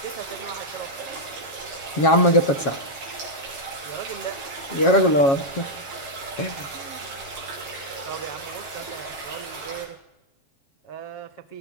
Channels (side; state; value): right; late; 7.3 ms